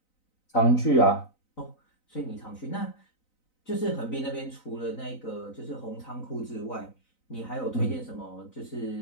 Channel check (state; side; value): late; right; 3.9 ms